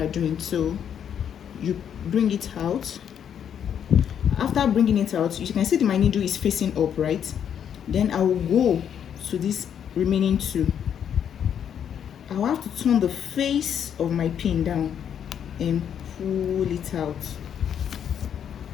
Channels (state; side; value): quieter; right; 8.7 dB